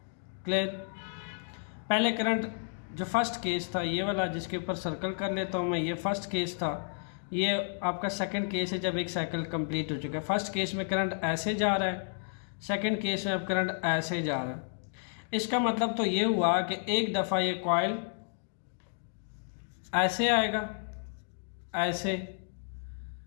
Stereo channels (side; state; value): right; silent; digital silence